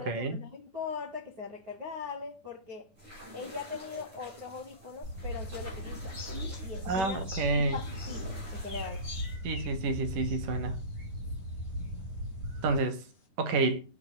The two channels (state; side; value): late; left; 10 ms